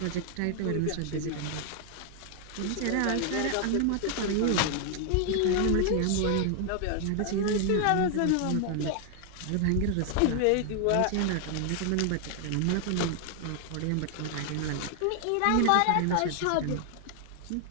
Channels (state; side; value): different; both; correlation 0.00